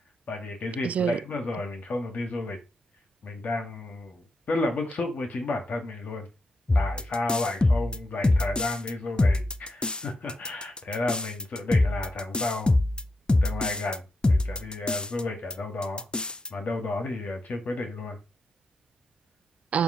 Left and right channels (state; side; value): normal; both; correlation 0.85